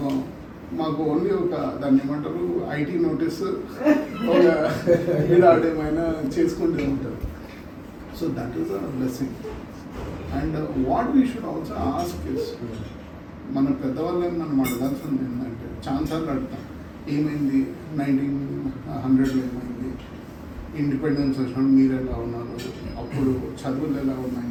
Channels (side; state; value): both; identical; correlation 1.00